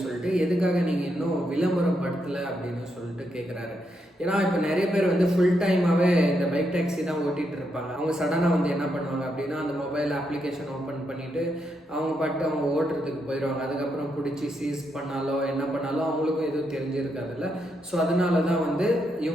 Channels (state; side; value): normal; both; correlation 0.80